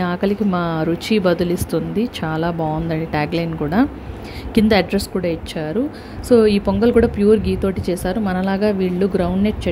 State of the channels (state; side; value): identical; both; correlation 1.00